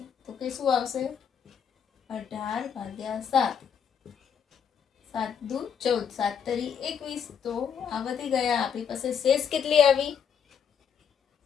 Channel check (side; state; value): right; quieter; 7.5 dB